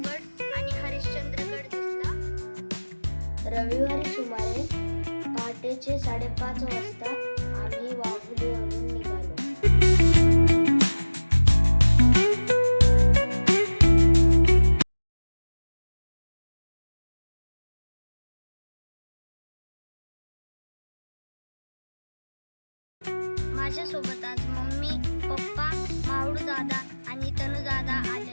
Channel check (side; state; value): both; inverted; correlation -1.00